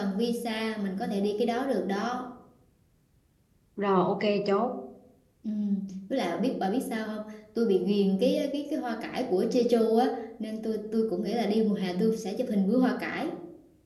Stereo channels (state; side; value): identical; both; correlation 1.00